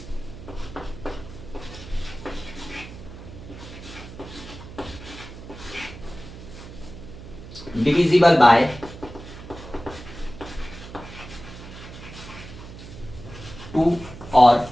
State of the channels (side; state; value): right; noise; hum, 14 dB below the sound